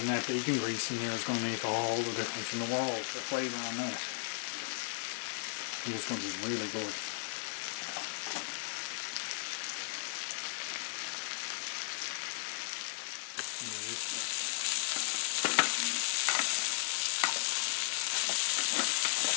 that bacon grease in there is going to make all the difference in the world, the flavour on that. I think it's going to be really good.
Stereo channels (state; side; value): silent; right; 54 dB below the other